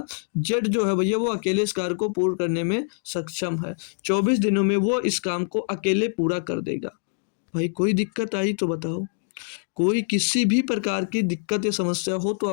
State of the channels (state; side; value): silent; right; digital silence